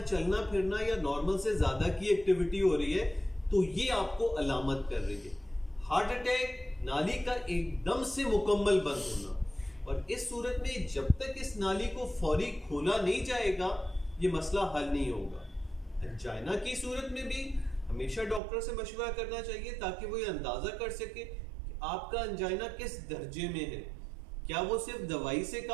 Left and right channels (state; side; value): drops out; left; at 18.4 s